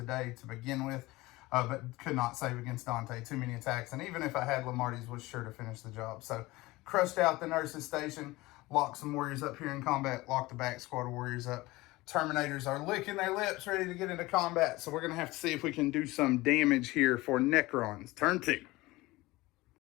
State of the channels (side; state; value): right; quieter; 20.2 dB